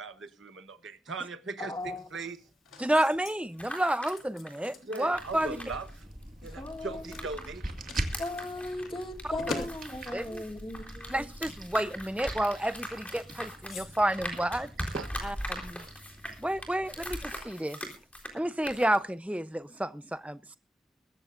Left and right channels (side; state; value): both; normal; correlation 0.88